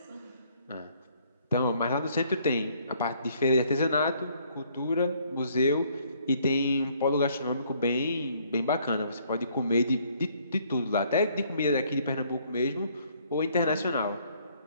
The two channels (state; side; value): inverted; both; correlation -0.64